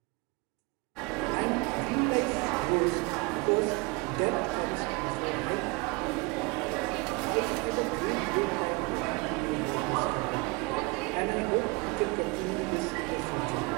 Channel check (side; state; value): left; quieter; 27.2 dB